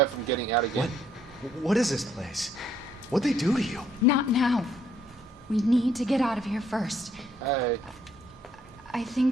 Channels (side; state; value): both; normal; correlation 0.67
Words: from getting out again. What is this place? What'd they do to you? Not now. We need to get out of here first. Hey. I